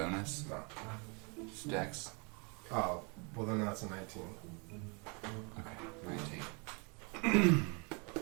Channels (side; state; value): left; quieter; 33.3 dB